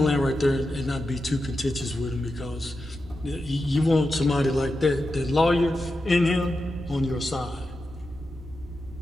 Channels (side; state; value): both; normal; correlation 0.90